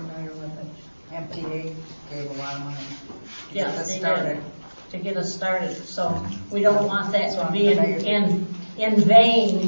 with it. MTA gave a lot of money to Yeah, get us they started. did, to get us started, so we don't want that So to be I'm in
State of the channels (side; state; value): both; inverted; correlation -1.00